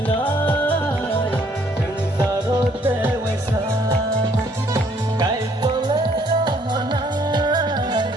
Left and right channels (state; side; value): normal; both; correlation 0.65